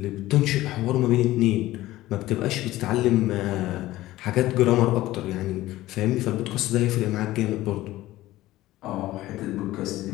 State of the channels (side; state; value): right; quieter; 16.4 dB